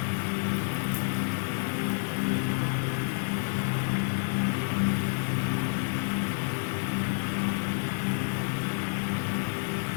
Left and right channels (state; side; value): silent; right; 58 dB below the other